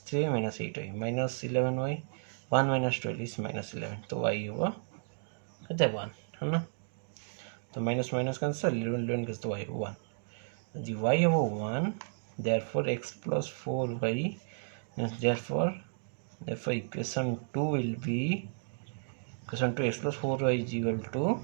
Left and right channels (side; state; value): left; silent; digital silence